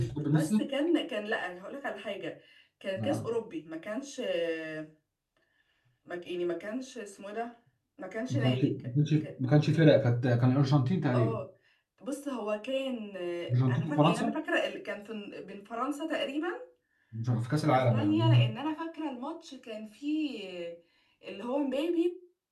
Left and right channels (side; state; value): both; identical; correlation 1.00